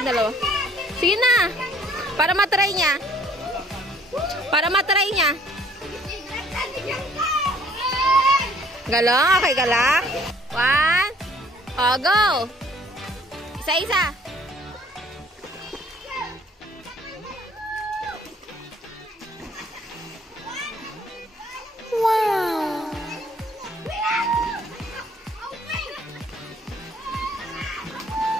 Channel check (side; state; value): both; normal; correlation 0.59